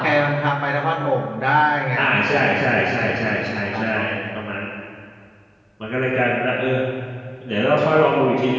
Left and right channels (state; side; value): identical; both; correlation 1.00